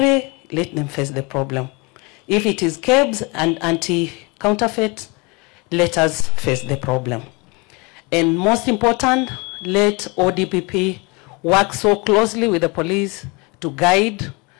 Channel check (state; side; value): quieter; right; 28.0 dB